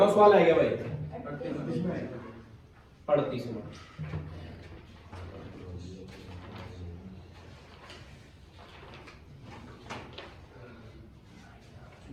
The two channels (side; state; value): both; identical; correlation 1.00